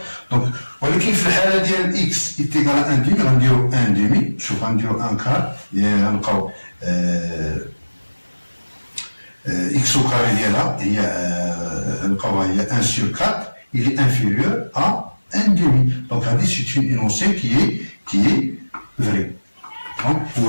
دونك ولكن في الحاله ديال اكس ايتيكال 1 دومي غنديرو 1 دومي. شوف غنديرو 1 كار غنلقاو x au carré ديالها هي نلقاوها هي 1 sur 4 il est inférieur à 1 demi. Donc c'est une énoncé qui est vraie. Donc pour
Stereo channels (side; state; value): both; inverted; correlation -1.00